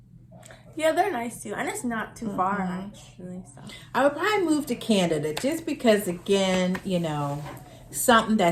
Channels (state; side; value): identical; both; correlation 1.00